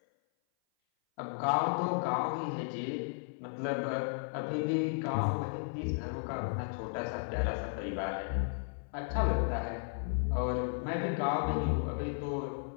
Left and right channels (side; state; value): right; silent; 55 dB below the other